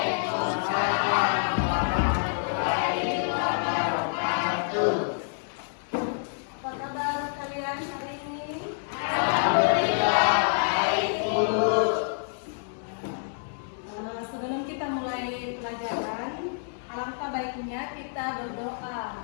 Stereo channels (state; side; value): silent; right; digital silence